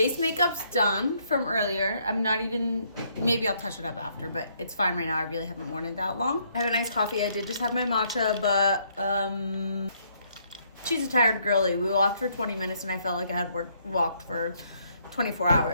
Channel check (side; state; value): both; inverted; correlation -0.70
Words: makeup's done from earlier. I'm not even, maybe I'll touch it up after, but it's fine right now. I really haven't worn it that long. I have a nice coffee. I did just have my matcha, but she's a tired girly. We walked for 20 minutes and I felt like I had walked for 24